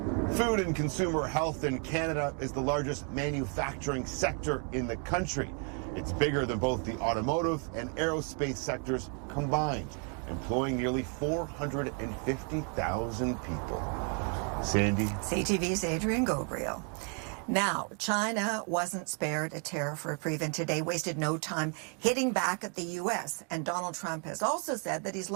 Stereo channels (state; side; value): quieter; left; 37.7 dB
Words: Food and consumer health in Canada is the largest manufacturing sector in the country. It's bigger than both the automotive and aerospace sectors combined, employing nearly 450,000 people. Sandy. CTV's Adrian Gobriel. Now, China wasn't spared a tariff reprieve and today wasted no time hitting back at the U.S. And Donald Trump has also said that he's